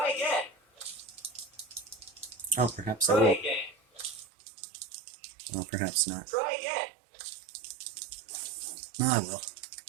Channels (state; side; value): drops out; left; at 4.2 s